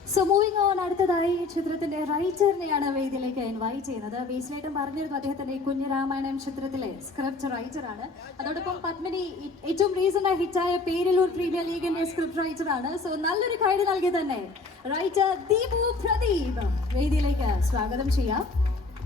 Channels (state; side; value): quieter; right; 3.7 dB